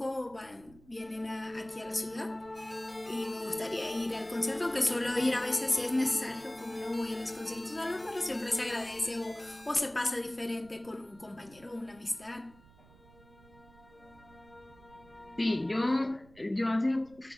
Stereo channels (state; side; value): noise; right; rumble, 24 dB below the sound